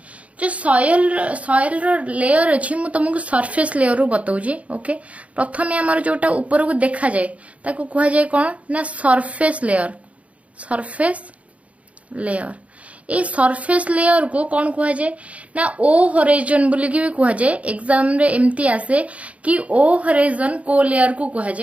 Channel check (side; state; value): left; late; 0.066 ms